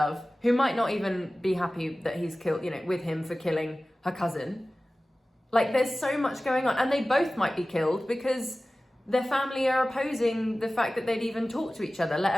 who might not even be happy that he's killed, with him for killing her cousin. Like, there's so much going on, and they both might be killed because their family are opposing the fact that they'd even talk to each other,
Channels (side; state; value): both; normal; correlation 0.97